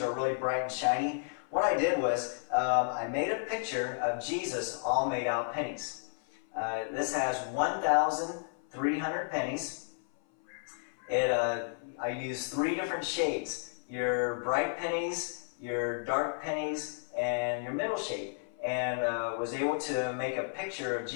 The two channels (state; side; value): silent; right; 56 dB below the other